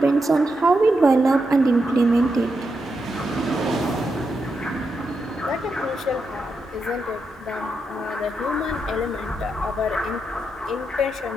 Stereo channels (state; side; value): normal; both; correlation 0.84